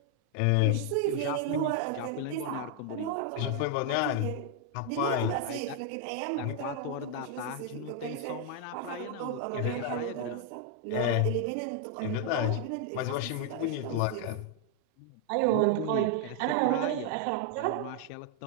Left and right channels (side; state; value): both; different; correlation 0.00